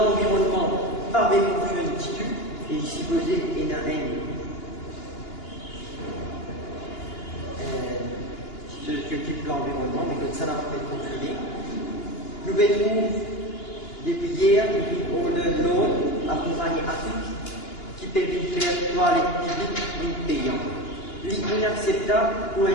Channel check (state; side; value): late; right; 2.9 ms